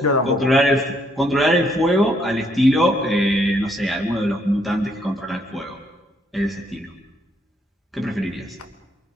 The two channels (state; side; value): normal; both; correlation 0.70